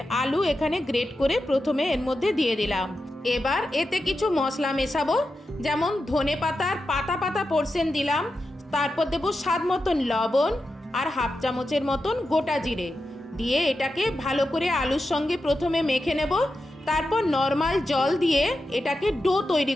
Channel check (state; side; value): normal; both; correlation 0.89